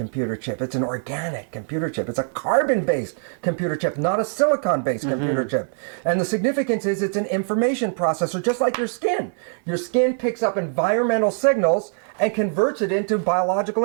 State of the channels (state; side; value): silent; left; digital silence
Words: chip. It's an organic computer chip. It's a carbon-based computer chip, not a silicon-based computer chip. And the significance is it's an information processor, just like your skin. Your skin picks up environmental signals and converts it into biological